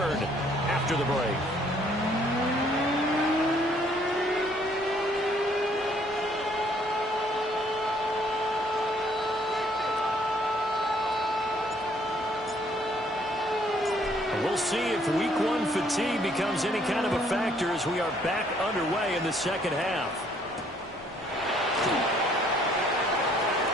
after the break. We'll see if week 1 fatigue becomes any kind of a factor as we are back underway in the second half.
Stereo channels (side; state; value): both; normal; correlation 0.64